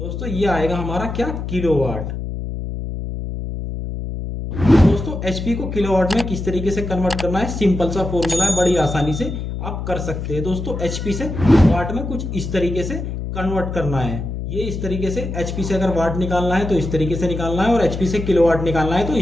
दोस्तों ये आएगा हमारा क्या, किलोवाट। दोस्तों एचपी को किलोवाट में किस तरीके से कन्वर्ट करना है, सिंपल सा फॉर्मूला है, बड़ी आसानी से आप कर सकते हैं। दोस्तों एचपी से वाट में कुछ इस तरीके से कन्वर्ट करना है। ये इस तरीके से एचपी से अगर वाट निकालना है तो इस तरीके से निकालना है, और एचपी से किलोवाट निकालना है तो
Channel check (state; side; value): noise; left; hum, 5 dB below the sound